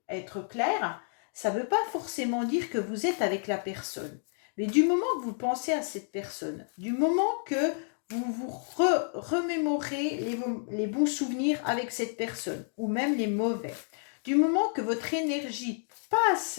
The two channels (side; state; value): right; silent; 58 dB below the other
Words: être claire, ça ne veut pas forcément dire que vous êtes avec la personne. Mais du moment que vous pensez à cette personne, du moment que vous vous remémorez les bons souvenirs avec cette personne, ou même les mauvais, du moment que votre énergie